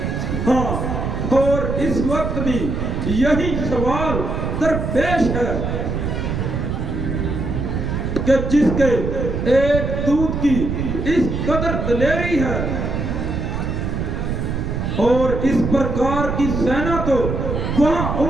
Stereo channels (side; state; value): right; noise; rumble, 2 dB below the sound